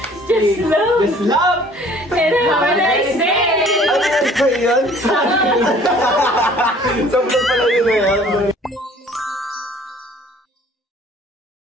Just love. Just love. And have a nice day! Ano yan? Sa yun? Sa vlog pala yun eh.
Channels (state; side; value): normal; both; correlation 0.53